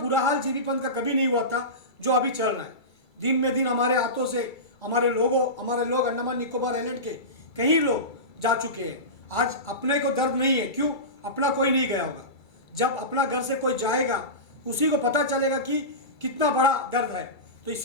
हाल जीबी पंथ का कभी नहीं हुआ था जो अभी चल रहा है। दिन में दिन हमारे हाथों से हमारे लोग अंडमान निकोबार आइलैंड के कई लोग जा चुके हैं। आज अपने को दर्द नहीं है, क्यों? अपना कोई नहीं गया होगा। जब अपना घर से कोई जाएगा उसी को पता चलेगा कि कितना बड़ा दर्द है। तो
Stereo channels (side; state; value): right; late; 2.3 ms